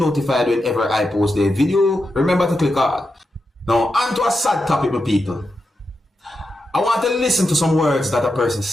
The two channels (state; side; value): normal; both; correlation 0.88